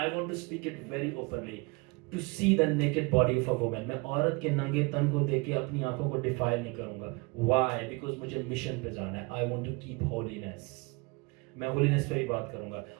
want to speak it very openly, to see the naked body of a woman. मैं औरत के नंगे तन को देख के अपनी आंखों को डिफाइल नहीं करूंगा। व्हाई? बिकॉज मुझे मिशन पे जाना है। I want to keep holiness. मैं होलीनेस पे ही बात करूंगा।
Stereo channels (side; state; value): left; quieter; 28.3 dB